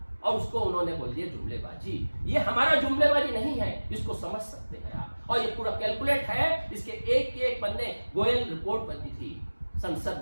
और उसको उन्होंने बोल दिया जुमलेबाजी। ये हमारा जुमलेबाजी नहीं है, इसको समझ सकते हैं आप। और ये पूरा कैलकुलेट है। इसके एक पन्ने गोयल रिपोर्ट बनी थी संसद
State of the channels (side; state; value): both; inverted; correlation -1.00